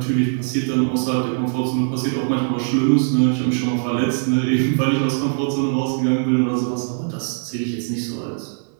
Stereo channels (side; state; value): left; silent; digital silence